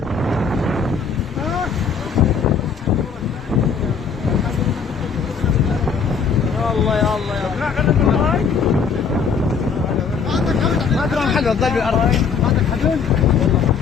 الله يا الله يا ما ادري محل الضل بالارض. عندك حلول؟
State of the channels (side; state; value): right; quieter; 5.9 dB